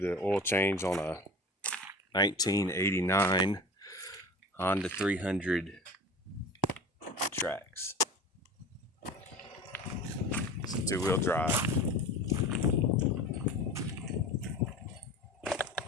the oil change on a 1989 Honda 300 Trax. It's a two-wheel drive.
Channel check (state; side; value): normal; both; correlation 0.36